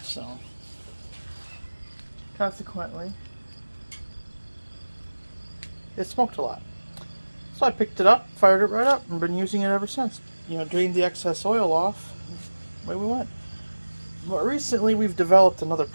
So, consequently, it smoked a lot. So I picked it up, fired it right up, and been using it ever since. Drained the excess oil off, away we went. But recently we've developed another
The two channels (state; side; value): inverted; both; correlation -1.00